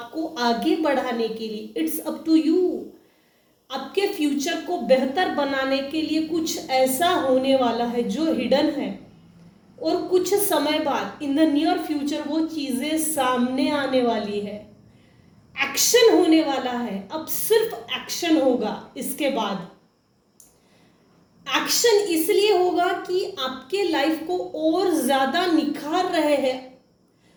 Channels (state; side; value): identical; both; correlation 1.00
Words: आगे बढ़ाने के लिए। इट्स अप टू यू, आपके फ्यूचर को बेहतर बनाने के लिए कुछ ऐसा होने वाला है जो हिडन है, और कुछ समय बाद इन द नियर फ्यूचर वो चीजें सामने आने वाली है। एक्शन होने वाला है। अब सिर्फ एक्शन होगा। इसके बाद एक्शन इसलिए होगा कि आपके लाइफ को और ज्यादा निखार रहे हैं,